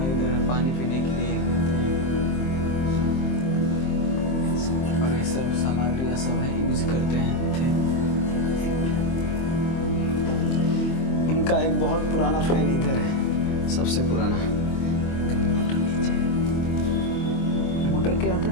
इधर पानी पीने के लिए, और ये सब सामग्रियाँ सब है यूज करते हैं थे। उनका एक बहुत पुराना फैन इधर है, सबसे पुराना। मोटर क्या आता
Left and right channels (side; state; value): right; late; 23 ms